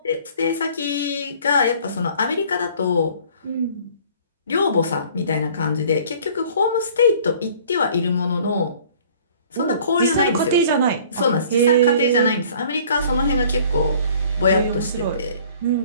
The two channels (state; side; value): inverted; both; correlation -0.52